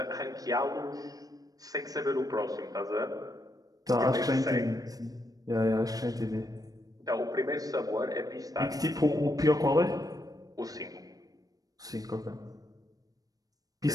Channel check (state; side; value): late; left; 0.18 ms